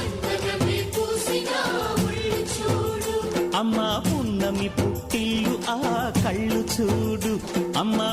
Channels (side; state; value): both; identical; correlation 1.00